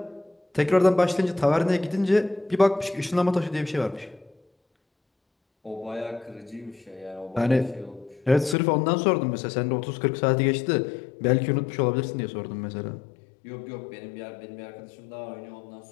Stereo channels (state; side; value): drops out; right; at 8.6 s